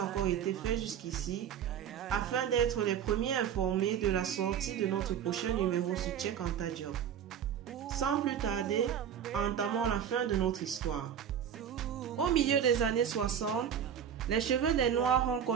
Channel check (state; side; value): quieter; left; 8.7 dB